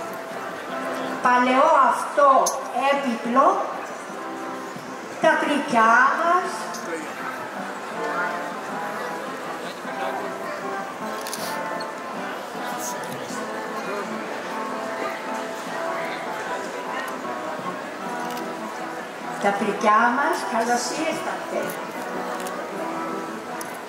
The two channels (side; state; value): both; identical; correlation 1.00